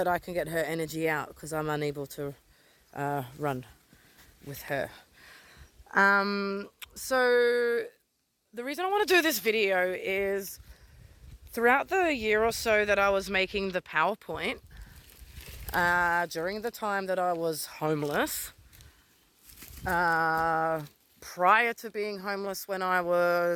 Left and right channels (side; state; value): both; identical; correlation 1.00